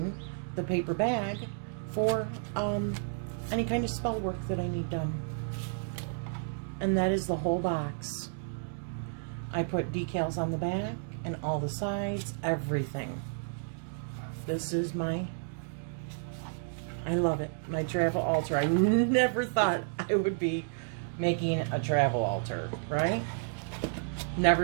the paper bag for any kind of spell work that I need done. And that is the whole box. I put decals on the back and all the sides, everything. This is my, I love it, my travel altar. I never thought I would be making a travel altar, right?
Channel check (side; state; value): left; silent; digital silence